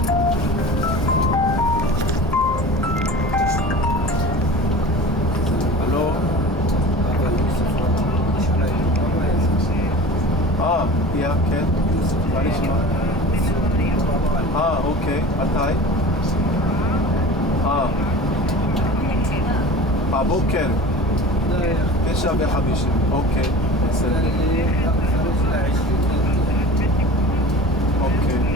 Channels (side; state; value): both; normal; correlation 0.38